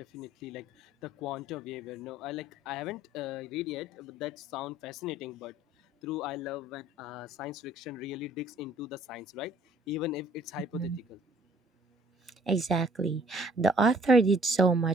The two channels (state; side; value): normal; both; correlation 0.58